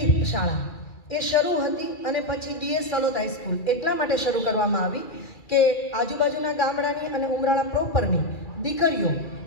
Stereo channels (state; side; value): late; right; 2.3 ms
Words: શાળા એ શરૂ હતી, અને પછી DS સલોદ હાઈસ્કૂલ એટલા માટે શરૂ કરવામાં આવી કે આજુબાજુના ગામડાની અને ઉમરાળા પ્રોપરની દીકરીઓ